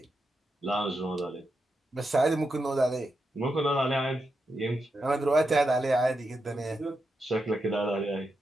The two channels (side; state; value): both; normal; correlation 0.86